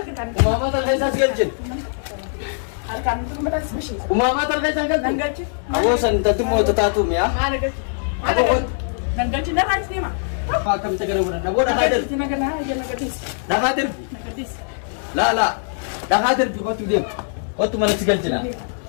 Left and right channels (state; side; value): silent; right; digital silence